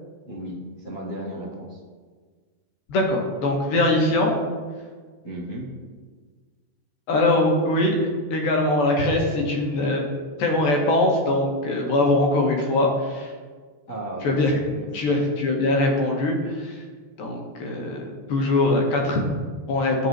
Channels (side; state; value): right; late; 14 ms